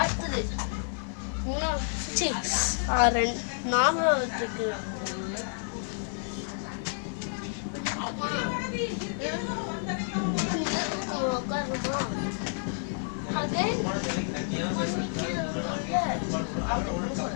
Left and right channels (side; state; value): right; silent; digital silence